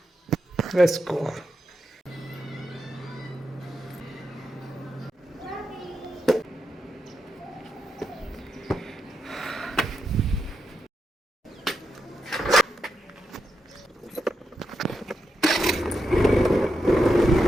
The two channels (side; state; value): both; normal; correlation 0.85